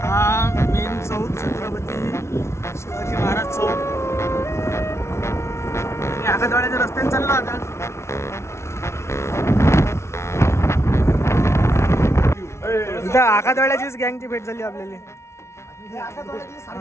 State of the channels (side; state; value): right; late; 0.13 ms